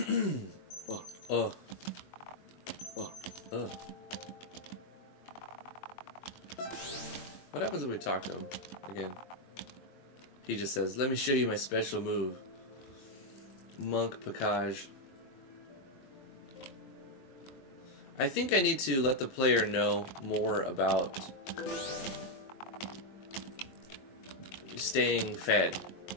What happens if we talk to him again? He just says, let me show you my special move. Monk Package. I think I need to let the player know more about staying fed.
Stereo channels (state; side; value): late; right; 22 ms